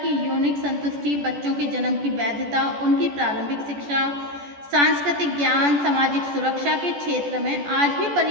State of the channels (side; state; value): left; late; 14 ms